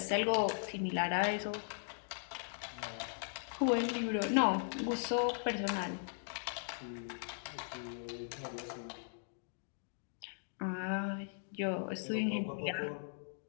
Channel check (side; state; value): right; silent; digital silence